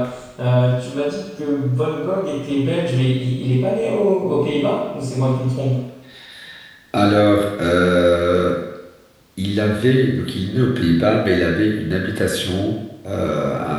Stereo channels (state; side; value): identical; both; correlation 1.00